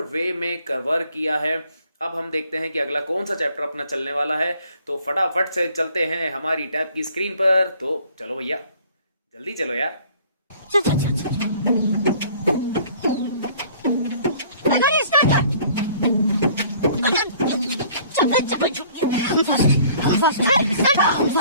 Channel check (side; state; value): both; inverted; correlation -0.55